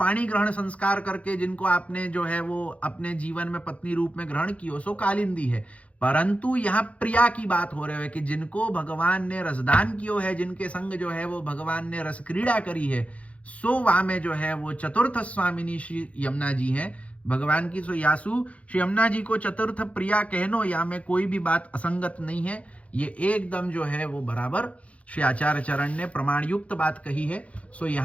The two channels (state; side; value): late; right; 0.065 ms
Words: ग्रहण संस्कार करके जिनको आपने जो है वो अपने जीवन में पत्नी रूप में ग्रहण किया, सो कालिंदी है। परंतु यहाँ प्रिया की बात हो रही है कि जिनको भगवान ने रसदान किया है, जिनके संग जो है वो भगवान ने रस क्रीड़ा करी है, सो वहां में जो है वो चतुर्थ स्वामिनी श्री यमुना जी हैं भगवान की। सो यासु श्री यमुना जी को चतुर्थ प्रिया कहनो या में कोई भी बात असंगत नहीं है। ये एकदम जो है वो बराबर श्री आचार्य चरण ने प्रमाण युक्त बात कही है। सो